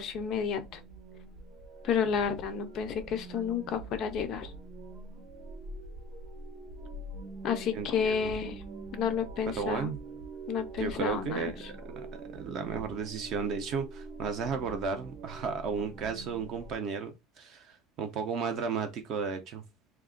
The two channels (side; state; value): both; normal; correlation 0.38